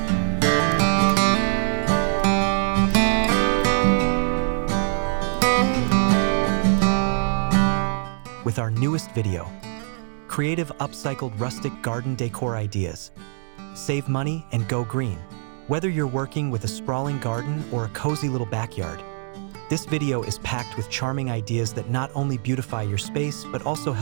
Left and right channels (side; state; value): left; silent; digital silence